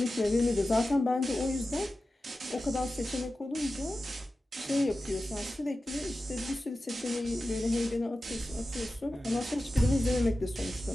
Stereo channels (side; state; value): both; normal; correlation 0.94